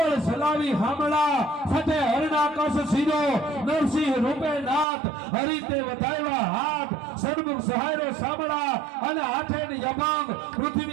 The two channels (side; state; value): left; drops out; at 4.9 s